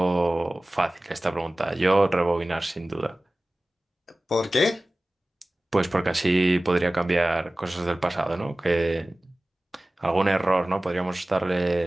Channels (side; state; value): both; normal; correlation 0.97